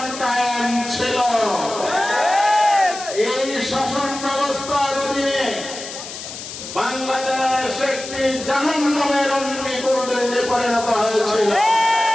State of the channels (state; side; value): noise; left; hiss, 10 dB below the sound